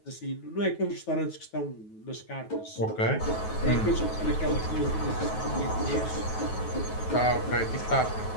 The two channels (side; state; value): right; late; 9.3 ms